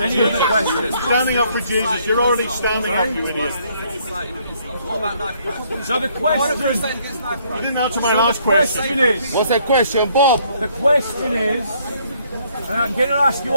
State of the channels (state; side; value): inverted; both; correlation -0.67